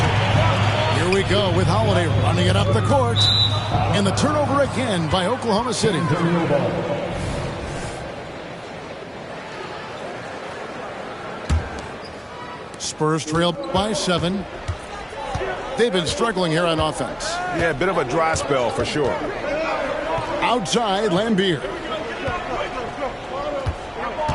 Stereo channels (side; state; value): both; identical; correlation 1.00